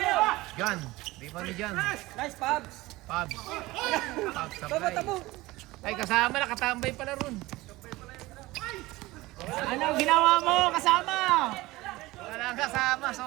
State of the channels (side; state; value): left; quieter; 19.6 dB